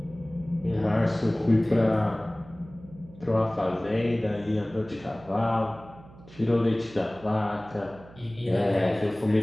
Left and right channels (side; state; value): right; noise; hum, 21 dB below the sound